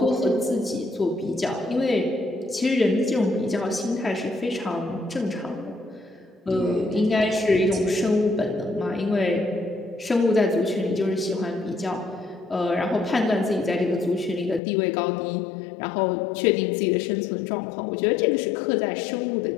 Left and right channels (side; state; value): right; drops out; at 14.6 s